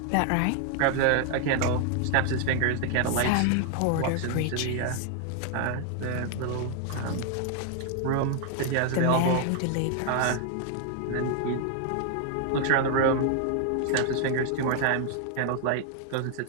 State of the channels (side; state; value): both; different; correlation 0.00